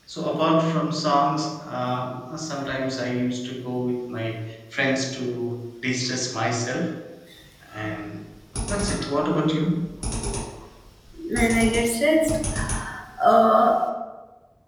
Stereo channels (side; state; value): both; identical; correlation 1.00